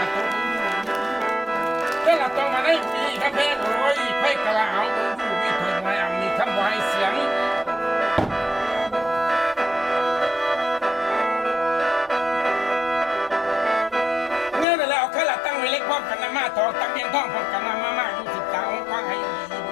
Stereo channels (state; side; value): drops out; right; at 14.7 s